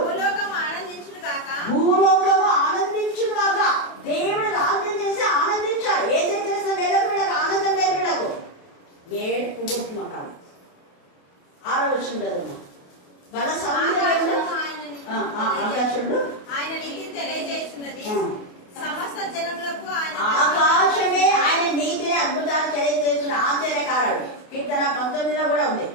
భూలోకము ఆనందించుగాక. దేవుడు రాజ్యం చేసి ఆనందించాడు. ఏదైతే చేసిన వీళ్ళకు ఆనందం లేదు, వీళ్ళకు ఏడుపు కొట్టుమకాడు. 6వ వచ్చింది కదా, బల సౌందర్యంలో ఆకాశంలో ఆయన నీతి తెలియజేస్తున్నది, సమస్త జనములకు ఆకాశమే ఆయన నీతిని అద్భుతాలు తెలియజేస్తున్న ఆశ్చర్యకారుడు. కీర్తన 19లో కూడా ఉంది.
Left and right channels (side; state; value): right; late; 28 ms